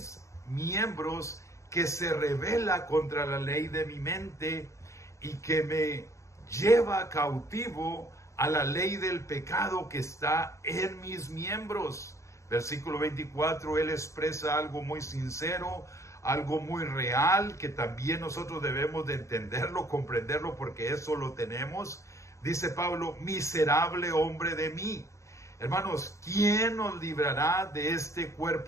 miembros que se rebela contra la ley de mi mente y que me lleva cautivo a la ley del pecado que está en mis miembros. Versículo 24, él expresa algo muy sincero, algo muy real, que también nosotros debemos de entenderlo, comprenderlo, porque eso lo tenemos. Dice Pablo: miserable hombre de mí. Hermanos, ¿quién nos librará de este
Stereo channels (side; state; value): right; late; 0.14 ms